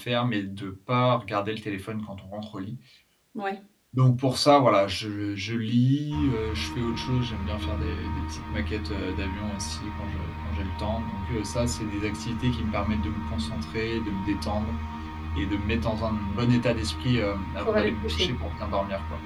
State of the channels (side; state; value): both; identical; correlation 1.00